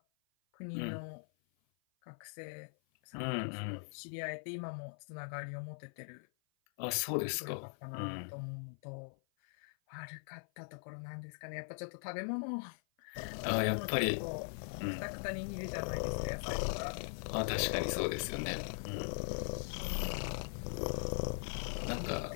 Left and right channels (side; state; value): right; silent; 51 dB below the other